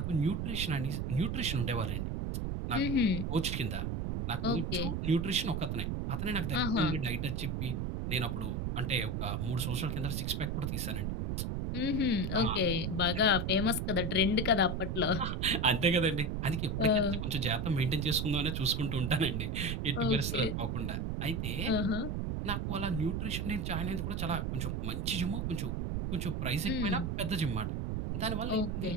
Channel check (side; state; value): right; noise; rumble, 1 dB below the sound